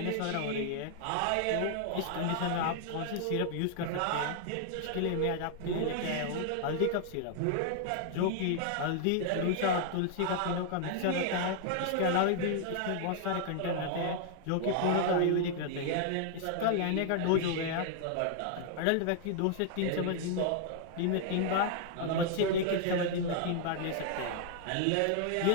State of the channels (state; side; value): different; both; correlation 0.00